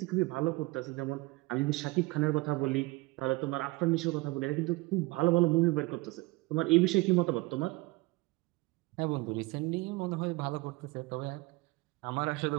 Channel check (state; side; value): quieter; left; 22.6 dB